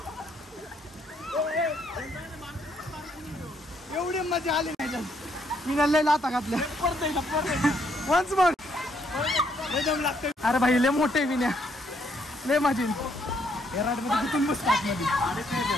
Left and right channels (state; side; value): normal; both; correlation 0.71